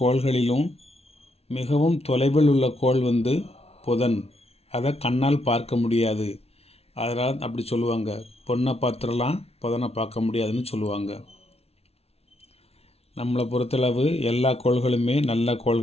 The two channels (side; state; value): right; late; 0.30 ms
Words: மிகவும் தொலைவில் உள்ள கோள் புதன். அதை கண்ணால் பார்க்க முடியாது. அதனால் அப்படி சொல்லுவாங்க, பொண்ணை பார்த்துடலாம் புதனை பார்க்க முடியாதுன்னு சொல்லுவாங்க. நம்மளை பொறுத்தளவு எல்லா கோள்களுமே நல்ல